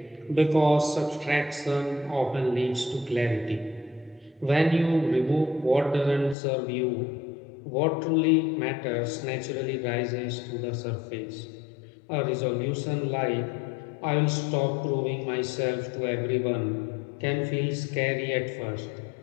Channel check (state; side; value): drops out; right; at 6.4 s